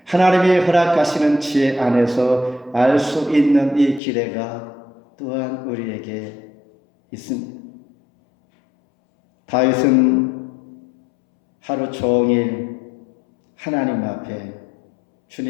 하나님이 허락하시는 지혜 안에서 알 수 있는 이 기대가 또한 우리에게 있습니다. 다윗은 하루 종일 하나님 앞에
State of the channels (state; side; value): drops out; right; at 4.0 s